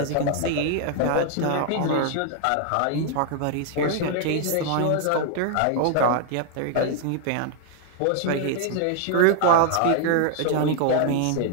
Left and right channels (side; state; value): both; different; correlation 0.00